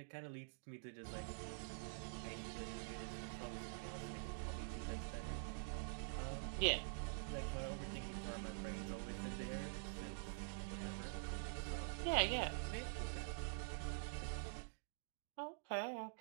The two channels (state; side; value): silent; left; digital silence